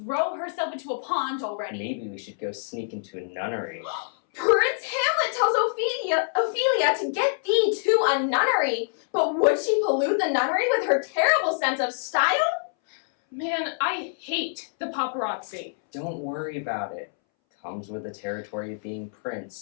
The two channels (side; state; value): right; silent; 61 dB below the other